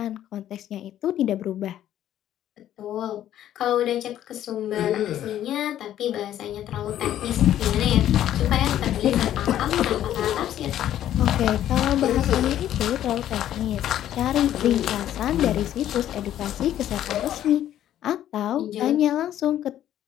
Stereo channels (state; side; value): quieter; right; 11.8 dB